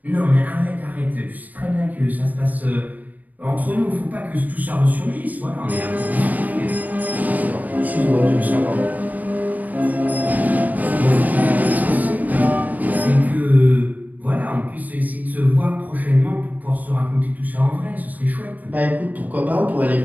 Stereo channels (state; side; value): late; left; 0.080 ms